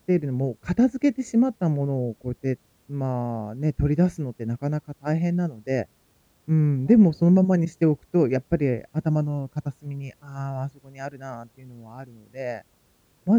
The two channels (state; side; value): identical; both; correlation 1.00